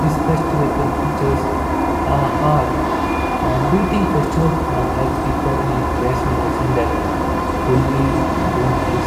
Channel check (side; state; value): both; identical; correlation 1.00